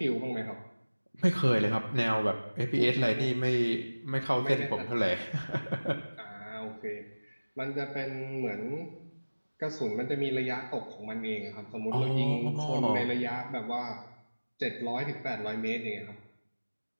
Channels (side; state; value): both; inverted; correlation -1.00